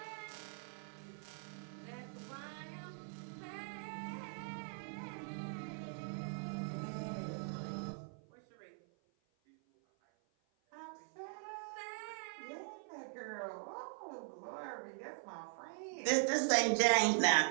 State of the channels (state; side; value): silent; left; 50 dB below the other